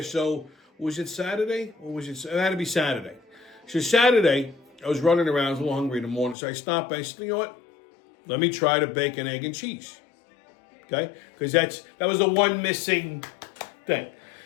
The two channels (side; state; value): right; drops out; at 6.4 s